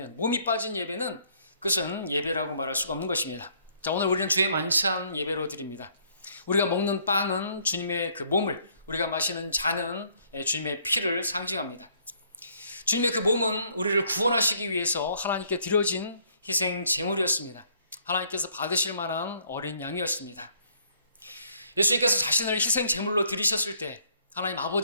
몸이 빠진 예배는 그것은 예배라고 말할 수가 없는 것입니다. 자, 오늘 우리는 주의 만찬 예배로 드립니다. 우리가 먹는 빵은 주님의 그 몸을, 우리가 마시는 잔은 주님의 피를 상징합니다. 주님의 그 몸은 우리를 구원하시기 위해서 하나님께 드려진 희생 제물이었습니다. 하나님께서 받으실 만한 어린 양이었습니다. 예수님께서 자신을 희생 제물로 드리셨을 때 하나님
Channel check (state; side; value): inverted; both; correlation -0.65